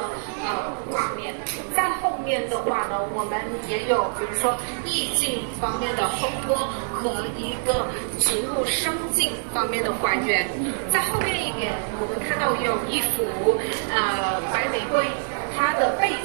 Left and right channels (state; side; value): silent; left; 62 dB below the other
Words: 画面。在后面的话呢，我们也有比如说意境方面的烘托和一个植物生境方面的还原。在后面一点，我们看到有一幅白玫瑰，它的背